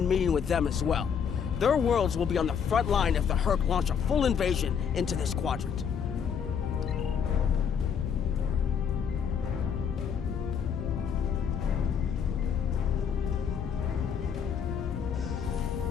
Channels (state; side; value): quieter; right; 7.3 dB